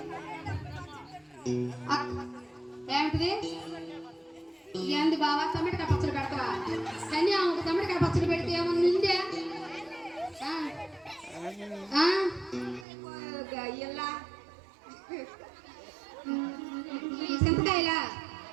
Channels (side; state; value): left; drops out; at 12.9 s